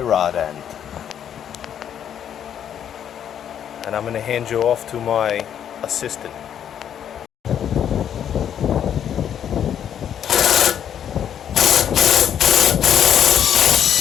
rod end. And I'm going to hand you off to my assistant.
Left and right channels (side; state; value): right; quieter; 9.3 dB